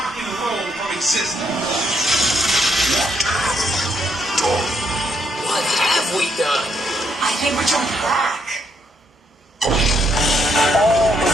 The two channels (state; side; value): normal; both; correlation 0.75